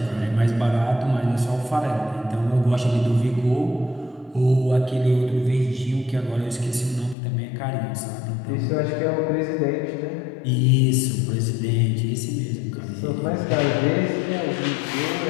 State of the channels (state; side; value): drops out; right; at 7.2 s